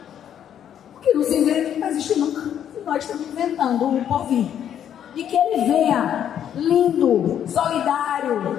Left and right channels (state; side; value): quieter; right; 9.6 dB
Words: O que não se inventa não vai existir nunca. E nós estamos inventando o porvir. E que ele venha lindo,